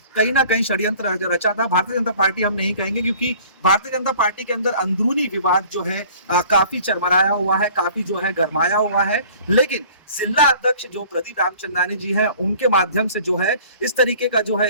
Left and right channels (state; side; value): inverted; both; correlation -0.50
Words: कहीं ना कहीं षड्यंत्र रचा था। भारतीय जनता पार्टी हम नहीं कहेंगे क्योंकि भारतीय जनता पार्टी के अंदर अंदरूनी विवाद जो है काफी चरमराया हुआ है, काफी जो है गरमाया हुआ है। लेकिन जिला अध्यक्ष जो प्रदीप रामचंद्रानी जी हैं उनके माध्यम से जो है इस तरीके का जो है